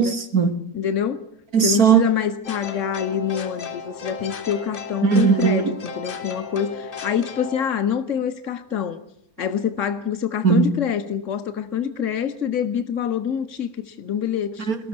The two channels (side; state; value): left; late; 4.4 ms